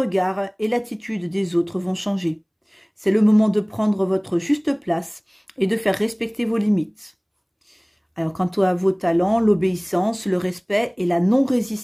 et l'attitude des autres vont changer. C'est le moment de prendre votre juste place et de faire respecter vos limites. Alors, quant à vos talents, l'obéissance, le respect et la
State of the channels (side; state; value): both; identical; correlation 1.00